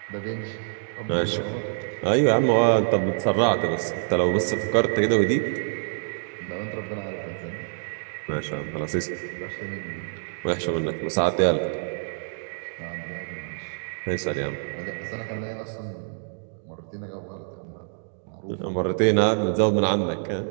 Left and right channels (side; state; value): left; silent; 61 dB below the other